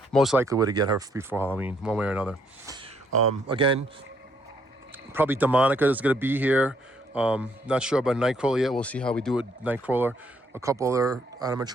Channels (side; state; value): both; normal; correlation 0.69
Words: Most likely we're to get her before Halloween, one way or another. Again, probably Demonica is gonna be here. Not sure about Nightcrawler yet. We'll see how we do with Nightcrawler. A couple other